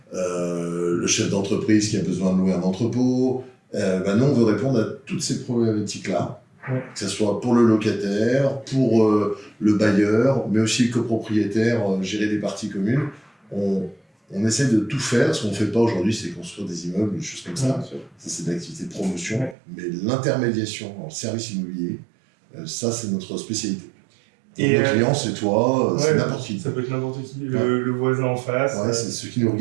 le chef d'entreprise qui a besoin de louer un entrepôt. Nous, on veut répondre à toutes ces problématiques-là, que ce soit pour le locataire, pour le bailleur, mais aussi le copropriétaire, gérer des parties communes. On essaie de tout faire. Ce qu'on ne fait pas aujourd'hui, c'est construire des immeubles, des choses comme ça. Ça, c'est de l'activité de promotion. Mais l'intermédiation en service immobilier, ça, c'est notre spécialité. Et nos clients, c'est toi, c'est n'importe qui. Ça peut être n'importe qui, le voisin en face. Ouais, c'est ceux qui nous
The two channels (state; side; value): drops out; left; at 19.6 s